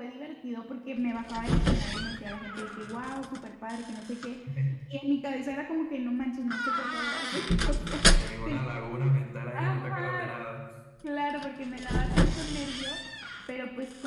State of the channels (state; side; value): identical; both; correlation 1.00